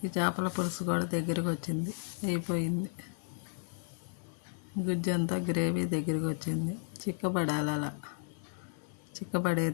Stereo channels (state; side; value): silent; right; 55 dB below the other